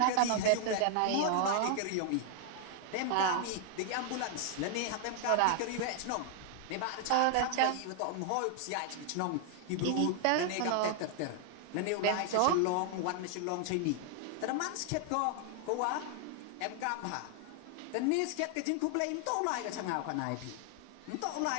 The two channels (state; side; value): different; both; correlation 0.00